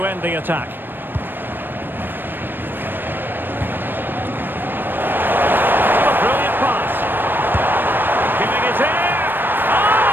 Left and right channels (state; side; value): late; left; 0.095 ms